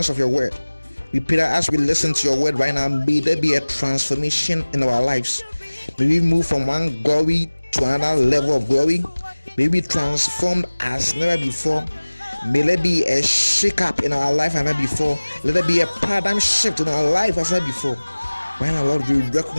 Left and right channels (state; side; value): inverted; both; correlation -1.00